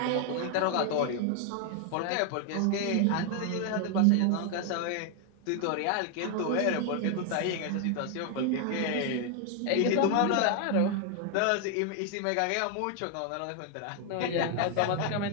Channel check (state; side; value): different; both; correlation 0.00